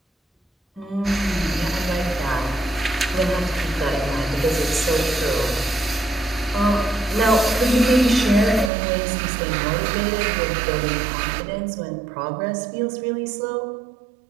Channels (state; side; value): drops out; left; at 8.7 s